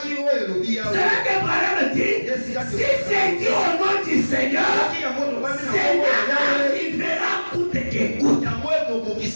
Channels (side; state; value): both; inverted; correlation -1.00